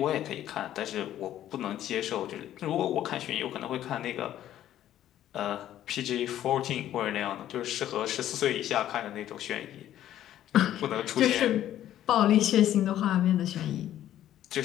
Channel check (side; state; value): right; quieter; 12.1 dB